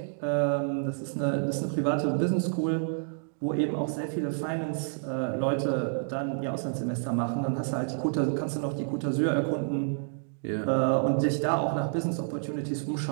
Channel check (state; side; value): silent; left; digital silence